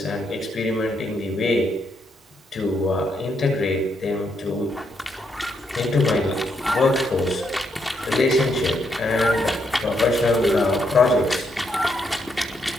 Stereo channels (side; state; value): both; normal; correlation 0.77